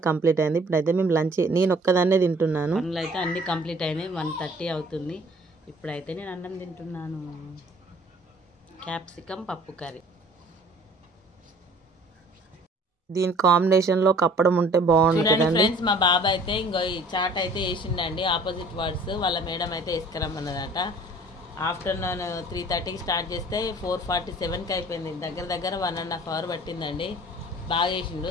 కంప్లీట్ అయింది. ఇప్పుడైతే మేము లంచ్ నేను ఒక్కదాన్నే తింటున్నాను. పనులు అయితే అన్ని కంప్లీట్ అయినాయి. 1:30 అవుతుంది. ఇప్పుడైతే నేను అన్నం తింటున్నాను. క్యాప్సికమ్ పప్పు కర్రీ. దీని కాంబినేషన్లో కప్పడం ఉంటే బాగుంటుంది ఫ్రెండ్స్. మా బాబా అయితే ఇంకో ఈ చాట్ అయితే వేసిండండి. ఆపోజిట్ వర్డ్స్ వాళ్ళ మేడం అయితే వేసుకురమ్మన్నదట. ఆఫ్టర్నూన్ 3:30కి స్టార్ట్ చేస్తే 4:47కి అయిపోయింది. దగ్గర 1.5 అవర్ పట్టిందండి. బాగా వేసిండు.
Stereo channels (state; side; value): normal; both; correlation 0.52